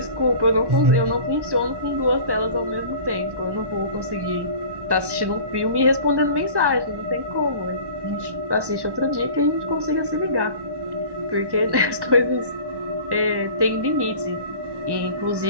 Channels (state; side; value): late; left; 1.1 ms